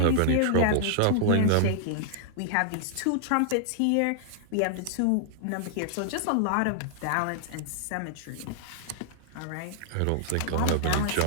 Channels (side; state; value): both; different; correlation -0.01